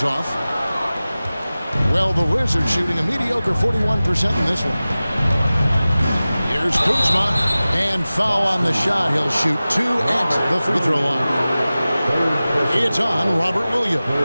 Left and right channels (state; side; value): inverted; both; correlation -0.97